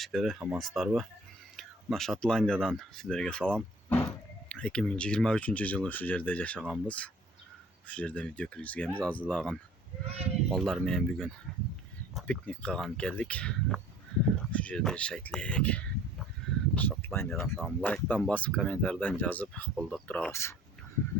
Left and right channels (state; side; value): normal; both; correlation 0.51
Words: амансыздарбы? Мына Шотландиядан сіздерге салам. 2023 жылы şu жерде жашаганбыз. Şu жерде видео киргизгенбиз. Азылаган балдар менен бүгүн пикник кылган келдик. Şu жерде жашайт элек. Шотландиядан салам. Лайктан басып, комментарийден жазып колдоп турабыз.